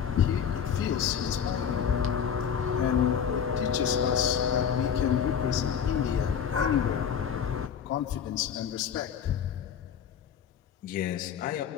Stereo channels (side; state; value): right; quieter; 7.9 dB